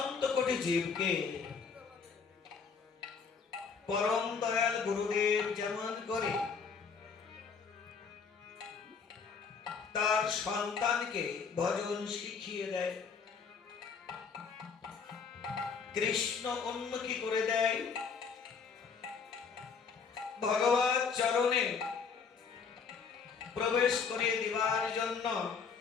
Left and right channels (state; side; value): quieter; right; 5.8 dB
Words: কোটি জীবকে পরম দয়াল গুরুদেব যেমন করে তার সন্তানকে ভজন শিখিয়ে দেয়, কৃষ্ণ উন্মুখী করে দেয়, ভগবত চরণে প্রবেশ করিয়ে দেওয়ার জন্য